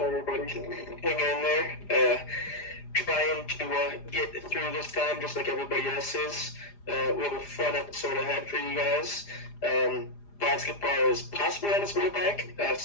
everybody? Hang in there. Trying to get through this time just like everybody else is. We have a fun episode ahead for you guys. Basketball is possibly on its way back.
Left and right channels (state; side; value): late; right; 4.9 ms